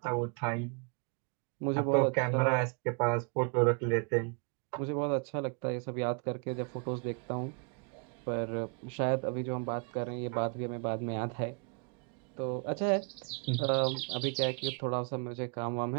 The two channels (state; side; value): quieter; left; 37.5 dB